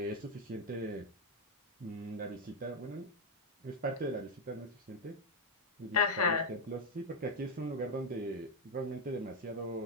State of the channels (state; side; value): normal; both; correlation 0.02